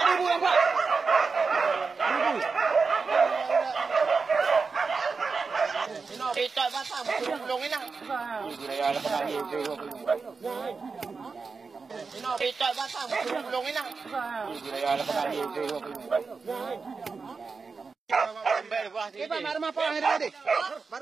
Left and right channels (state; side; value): quieter; left; 4.7 dB